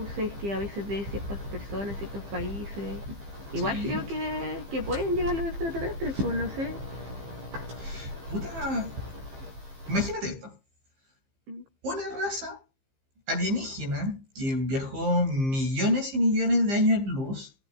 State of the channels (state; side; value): late; left; 15 ms